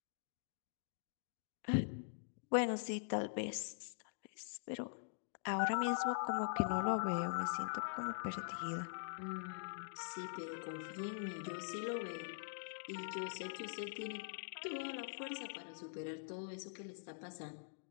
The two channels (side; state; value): right; silent; digital silence